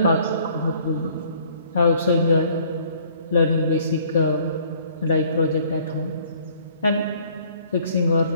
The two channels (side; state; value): both; inverted; correlation -0.59